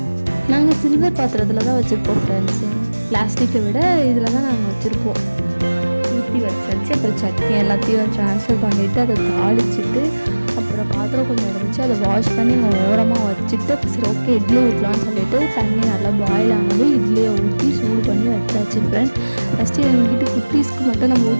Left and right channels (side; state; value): both; inverted; correlation -1.00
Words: நாங்கள் சில்வர் பாத்திரத்தில் தான் வச்சுருப்போம் ஃப்ரெண்ட்ஸு, பிளாஸ்டிக்கை விட இதில் தான் நாங்கள் வச்சுருப்போம். ஊற்றி வச்சாச்சு. அப்புறம் சட்னி எல்லாத்தையும் ட்ரான்ஸ்ஃபர் பண்ணிவிட்டு அதை தாளிச்சிட்டு அப்புறம் பாத்திரம் கொஞ்சம் இருந்துச்சு, அதை வாஷ் பண்ணி இங்கே ஓரமாக வச்சுட்டு சரி ஓகே இட்லி ஊற்றலான்னு சொல்லிட்டு தண்ணி நல்லா பாயில் ஆனதும் இட்லியை ஊற்றி சூடு பண்ணி வச்சாச்சு ஃப்ரெண்ட்ஸ். ஃபஸ்ட்டு எங்கள் வீட்டு குட்டீஸ்க்கு மட்டும் நம்ம